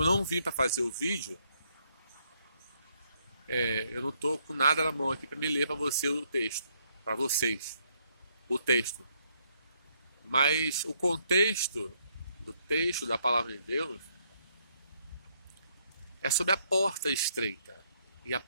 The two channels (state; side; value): inverted; both; correlation -0.72